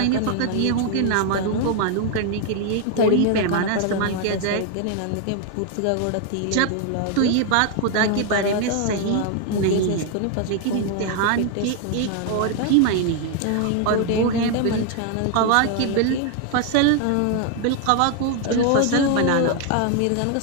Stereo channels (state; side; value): different; both; correlation 0.00